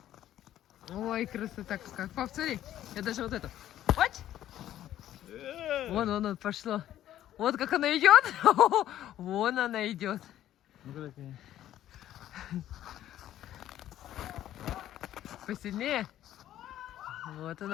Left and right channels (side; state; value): right; quieter; 12.4 dB